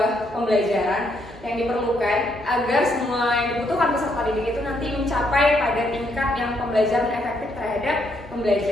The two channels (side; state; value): both; normal; correlation 0.74